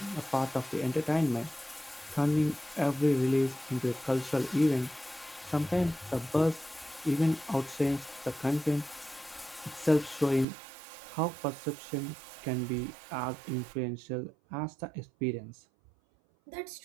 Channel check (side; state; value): left; drops out; at 10.5 s